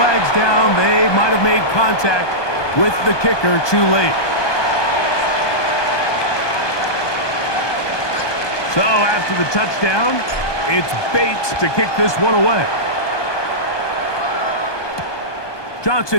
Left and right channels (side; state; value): right; late; 1.2 ms